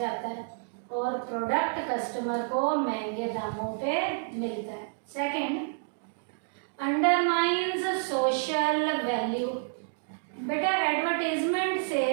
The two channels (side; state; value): left; silent; digital silence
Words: है और प्रोडक्ट कस्टमर को महंगे दामों पे मिलता है। Second, undermines social value. बेटा एडवर्टीजमेंट से